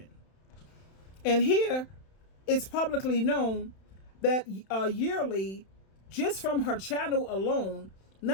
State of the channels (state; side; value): late; right; 31 ms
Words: And here, it's publicly known that yearly, just from her channel alone,